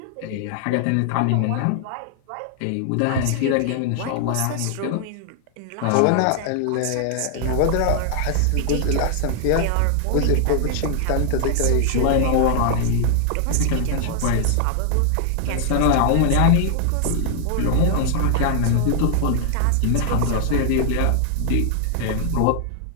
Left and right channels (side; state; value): both; different; correlation 0.00